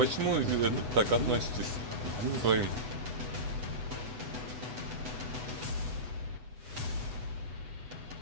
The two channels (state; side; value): late; left; 8.1 ms